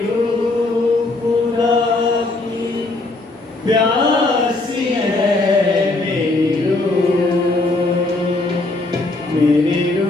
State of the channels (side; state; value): right; quieter; 3.0 dB